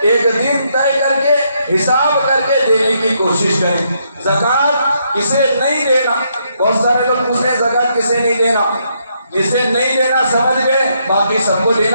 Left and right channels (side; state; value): both; inverted; correlation -0.75